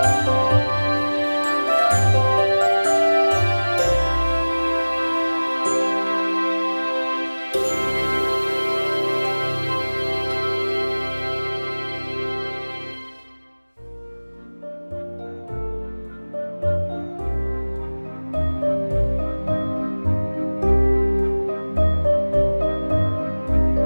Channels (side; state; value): both; inverted; correlation -1.00